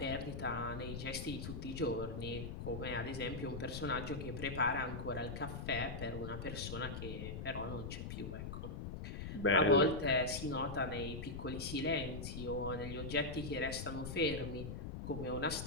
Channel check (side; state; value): left; noise; rumble, 6 dB below the sound